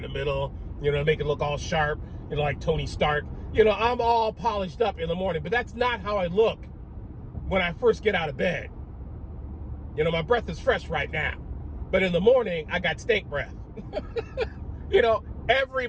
the middle, to make it look all sharp, like Tony Stark. I'm all polished up in the morning, but that's not how I look when I first get out of bed. My breath is fresh right now, but in the morning, I got stink breath.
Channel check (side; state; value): both; identical; correlation 1.00